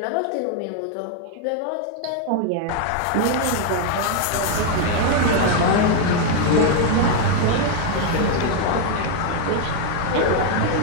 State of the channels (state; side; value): different; both; correlation 0.00